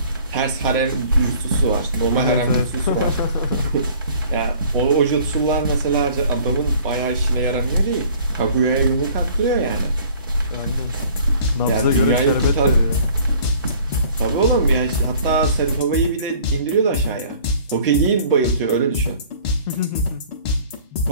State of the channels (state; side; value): inverted; both; correlation -0.52